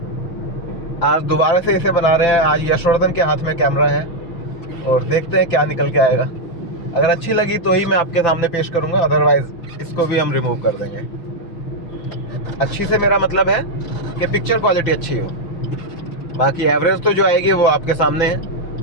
आज दोबारा से इसे बना रहे हैं। आज यशवर्धन के हाथ में कैमरा है और देखते हैं क्या निकल के आएगा। अगर अच्छी लगी तो ही मैं आपके सामने पेश करूँगा, अदरवाइज़ इसको भी हम रिमूव कर देंगे। अच्छी से मेरा मतलब है कि पिक्चर क्वालिटी अच्छी हो, बाकी एवरेज तो जो आएगी वो आपके सामने है।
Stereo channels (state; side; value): late; right; 5.9 ms